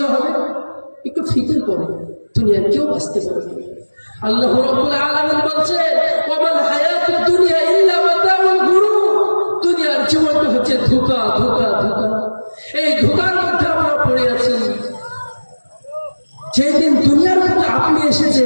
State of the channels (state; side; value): inverted; both; correlation -1.00